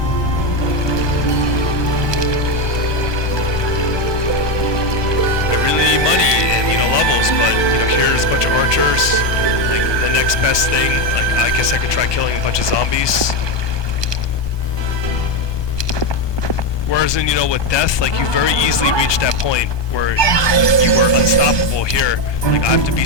Money and, you know, levels, but, you know, here's a bunch of archers. Like, the next best thing, like, I guess I could try killing a bunch of zombies. Whereas in, you know, with death, like, you very easily reach that point where you are unstoppable. Here, like, I have to be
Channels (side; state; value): right; late; 1.2 ms